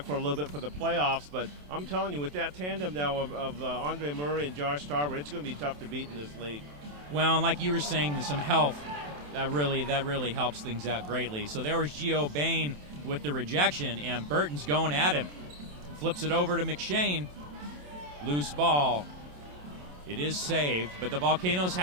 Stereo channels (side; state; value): left; late; 27 ms